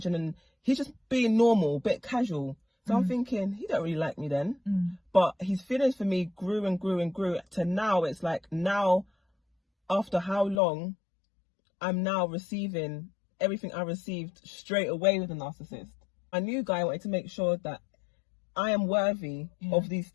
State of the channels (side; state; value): right; drops out; at 10.6 s